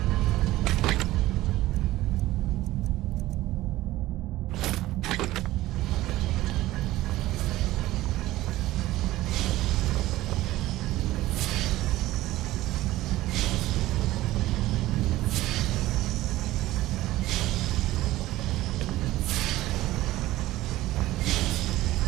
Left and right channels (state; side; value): quieter; left; 16.5 dB